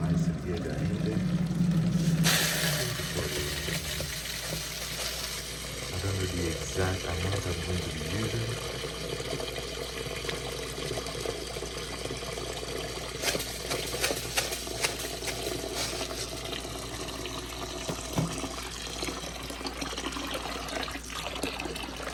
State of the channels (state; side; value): identical; both; correlation 1.00